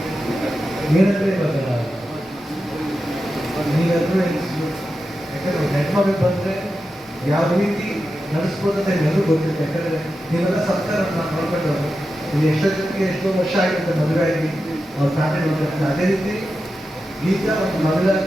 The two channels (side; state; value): both; normal; correlation 0.90